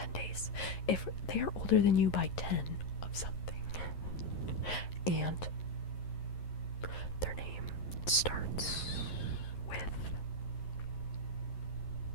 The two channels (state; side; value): late; right; 11 ms